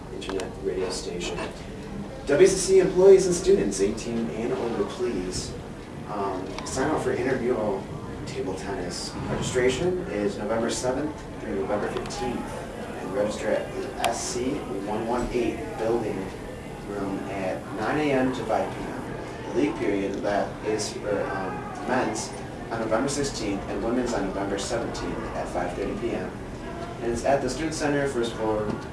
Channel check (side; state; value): both; identical; correlation 1.00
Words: internet radio station. WCC employees and students, 18 and older, please sign up for intramural table tennis. Registration is November 7th through November 15th, and register at the SC 118 building room at 9 a.m. to 5 p.m. The league period that is for men's on November 16th and women's on November 17th at 5:30 p.m. And it's at the Student Center first floor